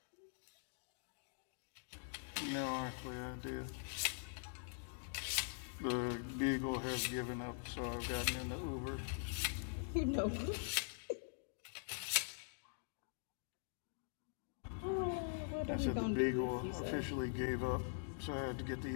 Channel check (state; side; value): silent; right; digital silence